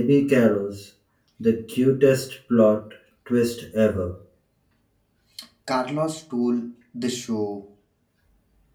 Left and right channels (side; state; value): both; identical; correlation 1.00